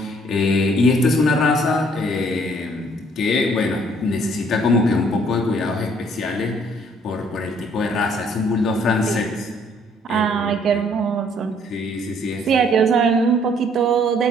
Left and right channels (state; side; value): normal; both; correlation 0.62